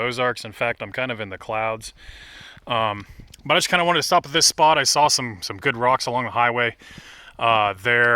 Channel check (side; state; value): both; identical; correlation 1.00